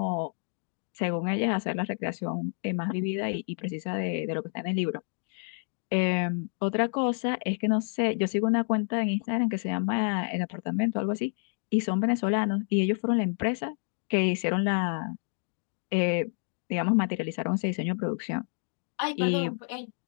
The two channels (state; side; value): silent; right; 58 dB below the other